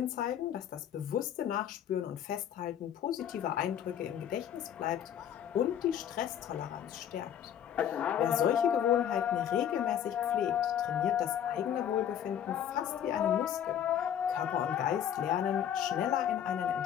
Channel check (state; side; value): quieter; right; 9.7 dB